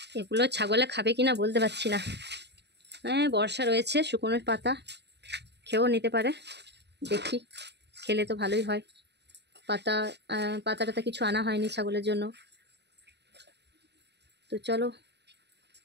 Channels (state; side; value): late; left; 0.50 ms